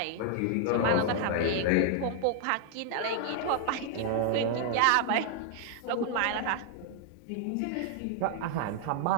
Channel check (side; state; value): both; different; correlation 0.00